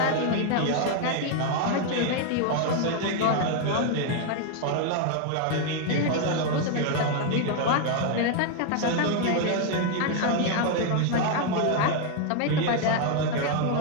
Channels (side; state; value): both; different; correlation 0.00